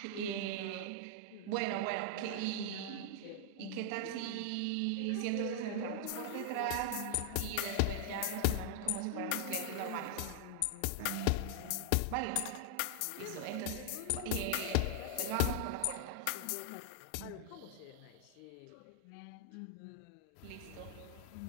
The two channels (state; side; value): different; both; correlation 0.00